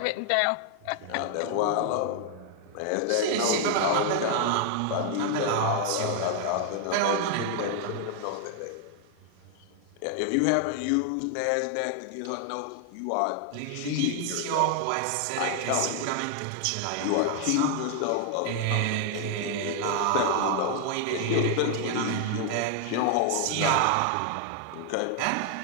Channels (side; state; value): both; different; correlation 0.00